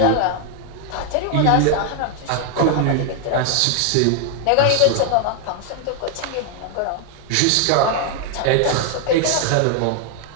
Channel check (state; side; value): different; both; correlation 0.00